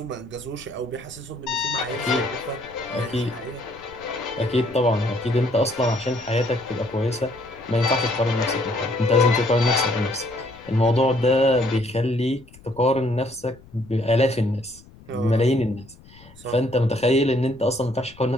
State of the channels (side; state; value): left; noise; rumble, 23 dB below the sound